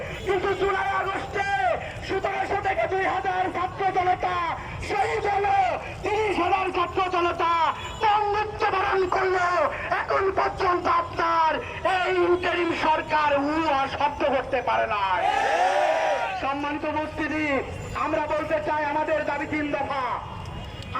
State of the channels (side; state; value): both; identical; correlation 1.00